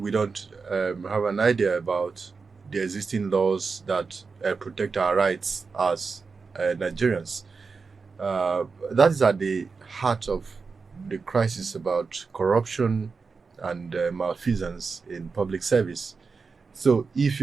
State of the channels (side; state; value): left; quieter; 4.7 dB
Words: don't have an idea about the existing laws that protect our rights as Nigerians. That is at the heart of the crisis about corruption and malfeasance in public service. So if